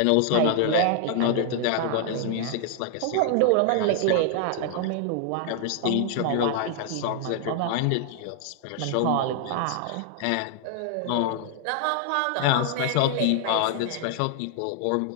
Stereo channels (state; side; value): different; both; correlation 0.00